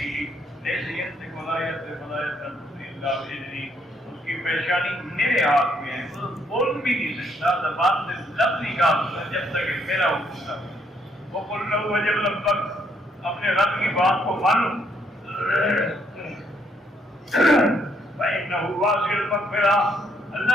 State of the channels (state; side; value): normal; both; correlation 0.71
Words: ان کی پیشانی میرے ہاتھ میں ہے، وہ بول بھی نہیں سکتا، زبان سے لفظ نکالتا جب تک میرا حکم تھا. وہ بول رہا ہوا جب لب تک اپنے رب کی بات کو مانو. فإنه واسع المغفرة.